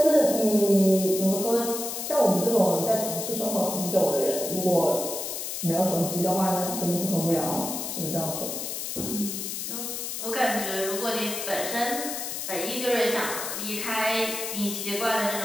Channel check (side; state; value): left; noise; hiss, 5 dB below the sound